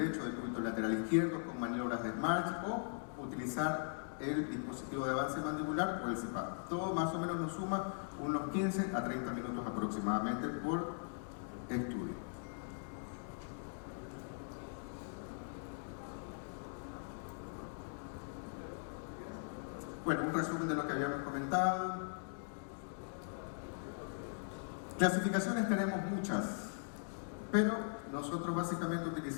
de cúbito lateral izquierdo, con maniobras de Smarch, o utilizar el dispositivo de avance mandibular o el CPAP. Todo más o menos nos suma unos 15 a 30 minutos aproximadamente por estudio. Bueno, un resumen de lo que habíamos comentado. Clasificaciones tenemos muchas, pero nosotros básicamente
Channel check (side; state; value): right; silent; digital silence